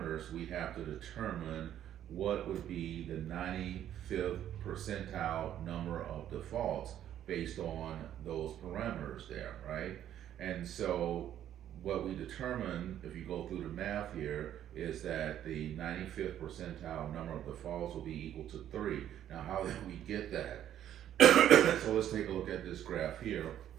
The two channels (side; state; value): left; quieter; 11.0 dB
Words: we have to determine what would be the 95th percentile number of defaults based on those parameters there, right? And so what we determine, if you go through the math here, is that the 95th percentile number of defaults will be equal to 3. Now, how did we get that? So let's take a look at this graph here.